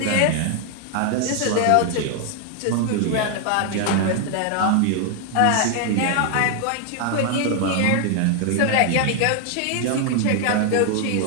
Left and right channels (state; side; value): different; both; correlation 0.00